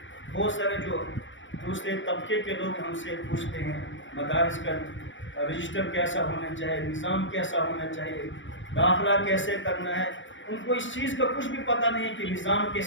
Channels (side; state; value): right; late; 0.56 ms